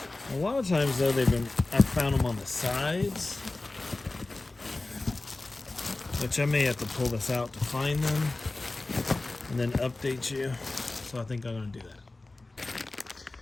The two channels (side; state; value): right; quieter; 3.1 dB